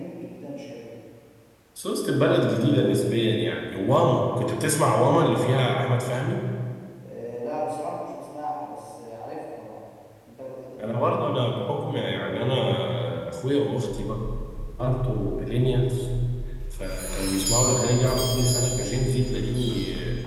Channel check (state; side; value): identical; both; correlation 1.00